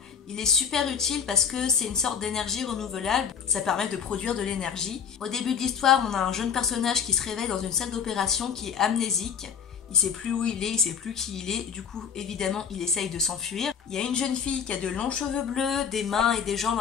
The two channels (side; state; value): right; quieter; 7.2 dB